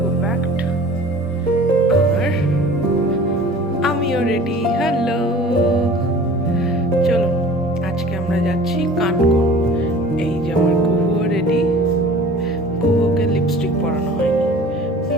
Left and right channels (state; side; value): normal; both; correlation 0.45